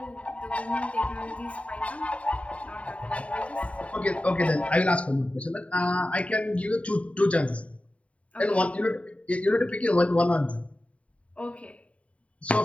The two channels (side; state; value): right; late; 0.065 ms